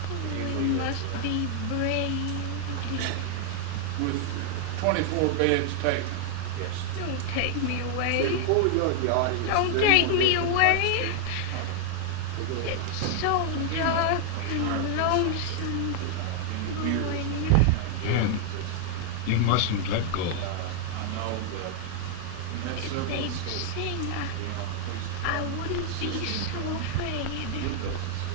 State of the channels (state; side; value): different; both; correlation 0.00